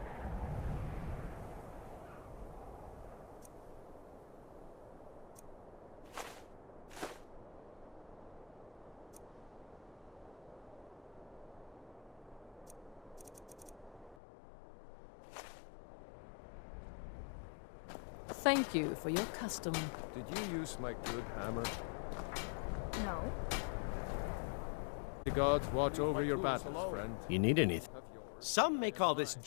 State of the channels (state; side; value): drops out; right; at 14.2 s